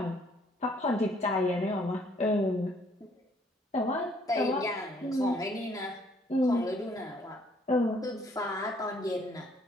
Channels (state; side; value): normal; both; correlation 0.64